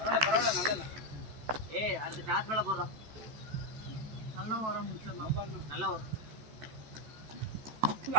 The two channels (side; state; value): left; late; 14 ms